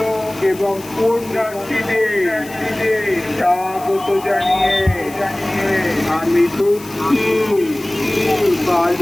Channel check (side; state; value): left; noise; hiss, 18 dB below the sound